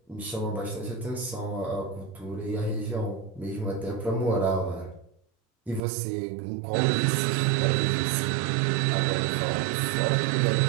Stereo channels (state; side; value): drops out; left; at 5.8 s